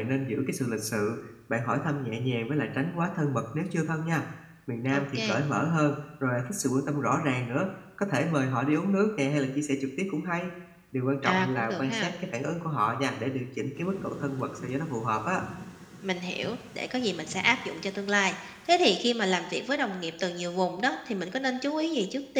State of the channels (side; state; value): both; identical; correlation 1.00